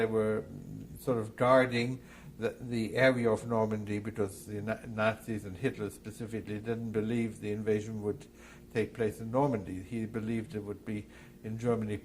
were sort of guarding the area of Normandy, because the Nazis and Hitler specifically didn't believe the invasion would take place in Normandy. He believed it would be in Germany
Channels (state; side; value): identical; both; correlation 1.00